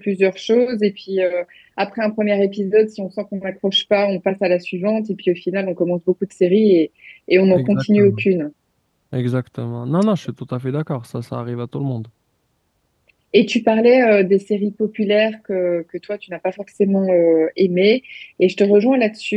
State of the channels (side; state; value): both; identical; correlation 1.00